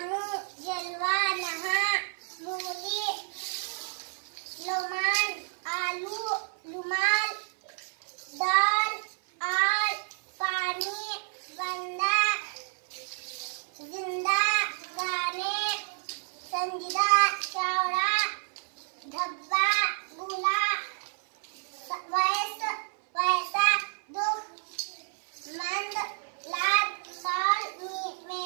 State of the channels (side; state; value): left; silent; 58 dB below the other